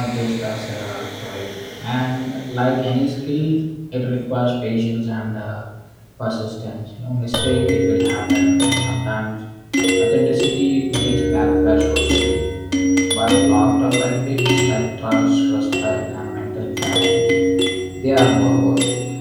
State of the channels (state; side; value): identical; both; correlation 1.00